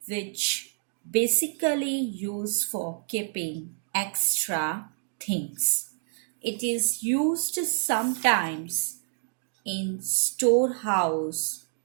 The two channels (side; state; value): left; silent; digital silence